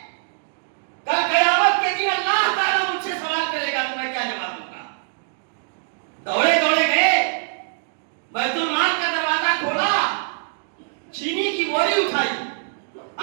کل قیامت کے دن اللہ تعالیٰ مجھ سے سوال کرے گا تو میں کیا جواب دوں گا؟ دوڑے دوڑے گئے، بیت المال کا دروازہ کھولا، چینی کی بوری اٹھائی،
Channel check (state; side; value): silent; left; digital silence